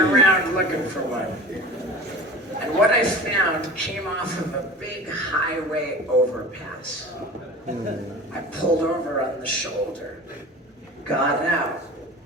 looking for one. And what I found came off of a big highway overpass. I pulled over on the shoulder, got out.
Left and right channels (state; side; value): normal; both; correlation 0.37